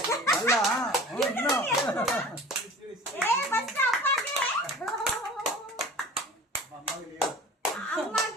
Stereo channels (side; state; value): both; normal; correlation 0.41